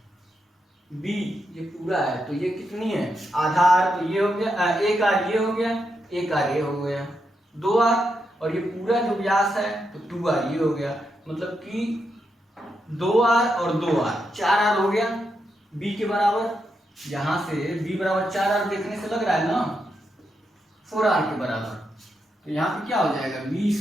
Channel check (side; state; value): both; normal; correlation 0.83